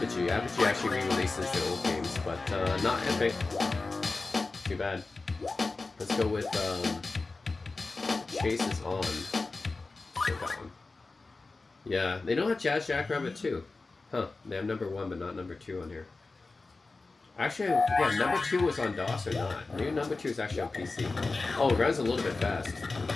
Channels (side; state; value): right; quieter; 3.6 dB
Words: Apogee actually re-releases their old games, but, not Epic. Too bad. Let's go with, Chase is On. That one. Yeah, they don't have Jazz Jackrabbit 2. Huh, they have number 1 but not number 2 on here. Actually, yeah, number 2 was on DOS or not. Maybe number 2 is actually on PC. Oh, it runs a little bit fast.